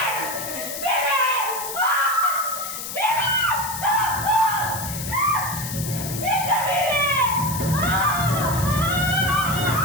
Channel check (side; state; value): left; noise; hiss, 7 dB below the sound